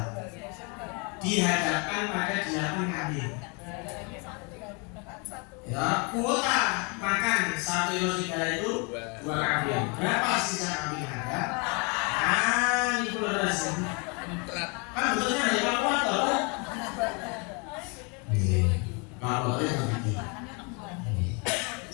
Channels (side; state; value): right; quieter; 32.8 dB